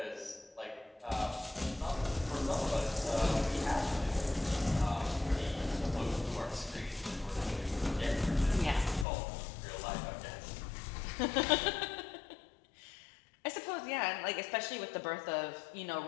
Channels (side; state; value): right; drops out; at 9.1 s